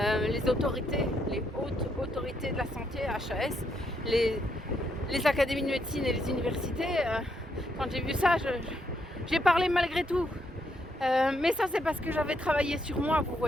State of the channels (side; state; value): both; normal; correlation 0.76